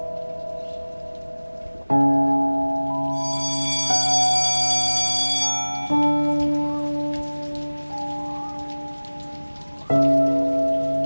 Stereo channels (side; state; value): both; inverted; correlation -1.00